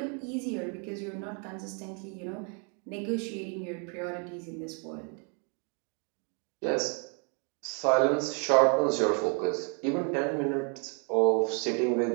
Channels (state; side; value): quieter; left; 38.2 dB